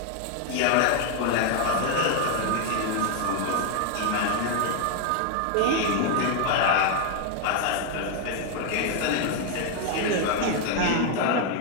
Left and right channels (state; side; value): different; both; correlation 0.01